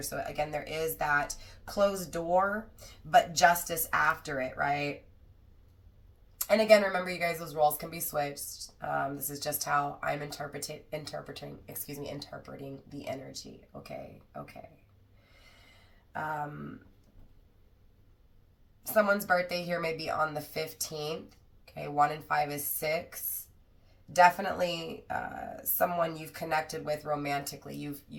So again, there is that closed door, but justice after it, right? And again, remember, you guys, those roles can be switched. This is just how I'm interpreting the energy. Okay. Someone's birthday here may be on the 15th. Okay, 1 and 5 is 6. Definitely someone you've connected with romantically. You've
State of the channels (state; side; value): identical; both; correlation 1.00